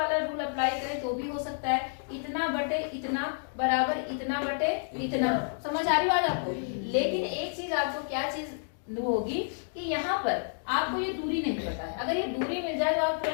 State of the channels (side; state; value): right; silent; digital silence